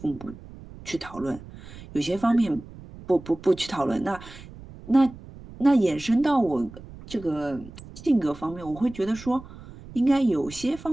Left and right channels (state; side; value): noise; right; rumble, 17 dB below the sound